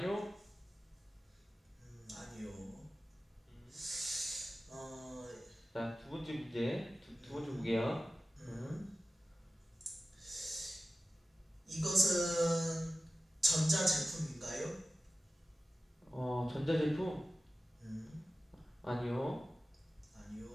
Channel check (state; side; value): normal; both; correlation 0.95